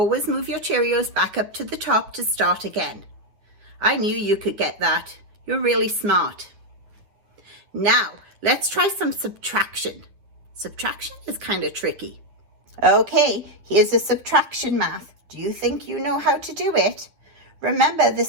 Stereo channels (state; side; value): late; left; 9.9 ms